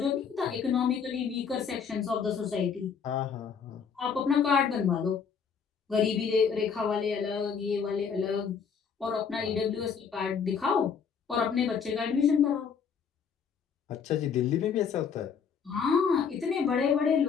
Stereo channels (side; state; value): right; quieter; 6.5 dB